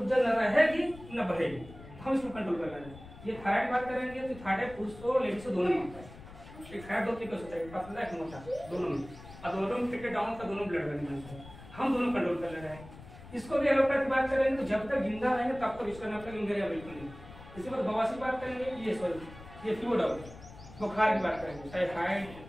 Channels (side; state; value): left; noise; rumble, 17 dB below the sound